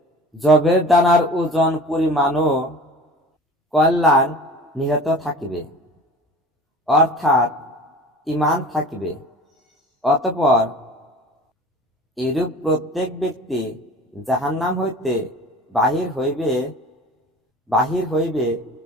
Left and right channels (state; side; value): normal; both; correlation 0.40